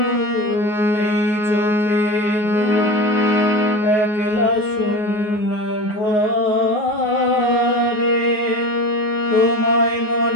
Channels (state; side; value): late; right; 9.5 ms